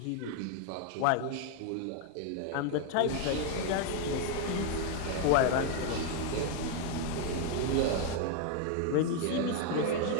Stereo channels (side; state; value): both; different; correlation 0.01